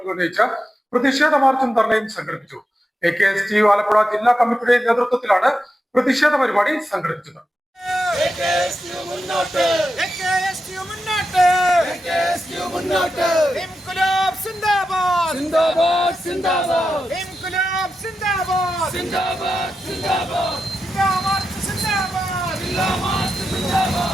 ഉന്നയിച്ച് പ്രതിഷേധ മാർച്ചും ധർണയും സംഘടിപ്പിച്ചു. AKSTU ആലപ്പുഴ ജില്ലാ കമ്മിറ്റിയുടെ നേതൃത്വത്തിലാണ് പ്രതിഷേധ പരിപാടി സംഘടിപ്പിച്ചത്.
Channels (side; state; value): both; normal; correlation 0.89